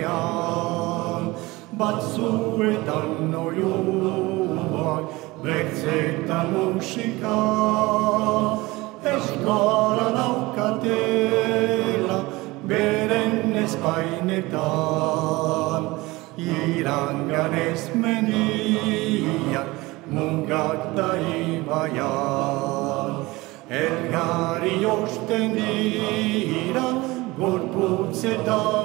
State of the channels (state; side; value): quieter; left; 21.3 dB